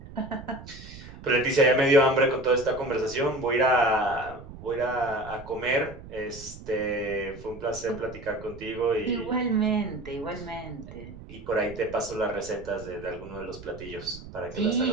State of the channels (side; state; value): right; noise; rumble, 15 dB below the sound